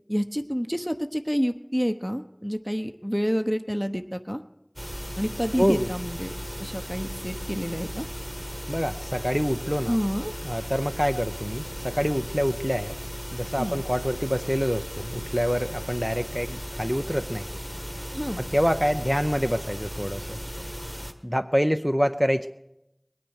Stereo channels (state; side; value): identical; both; correlation 1.00